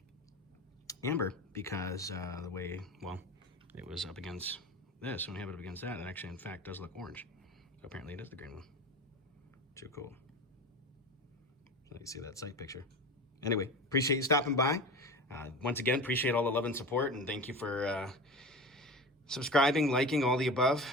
amber, because the way, well, it was up against this. When you have it up against that, it actually, in fact, does look orange. So apparently it is the green one. Too cool. Let you see that sight picture. Anyway, appreciate you stopping by. Once again, appreciate all the love and support, and thank you for subscribing, liking, all the above.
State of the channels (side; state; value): both; normal; correlation 0.30